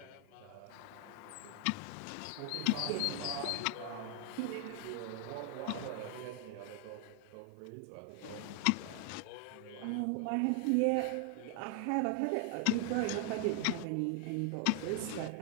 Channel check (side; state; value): both; different; correlation 0.00